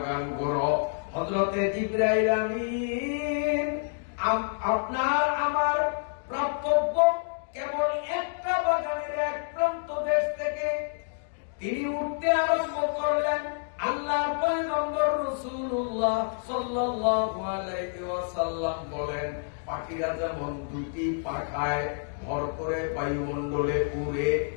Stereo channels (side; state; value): right; silent; digital silence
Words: ঘোরো। হযরতে জিবরাইল আমিন আপনার আমার প্রাপ্তব্য কেবল একটা বাগানের এক প্রান্ত দেশ থেকে তিনি উঠতে আরম্ভ করলেন। আল্লাহর পয়গম্বর রাসূলুল্লাহ সাল্লাল্লাহু আলাইহি ওয়াসাল্লাম বলেন, পাখিরা যেমন দুটি পাখায় ভর করে বায়ুমণ্ডলে উড়ে,